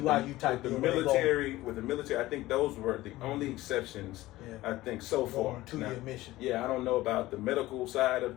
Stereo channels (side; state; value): right; quieter; 17.3 dB